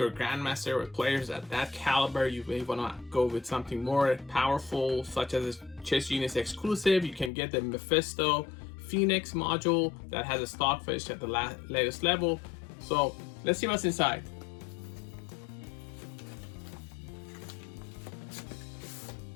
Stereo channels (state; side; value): drops out; right; at 7.3 s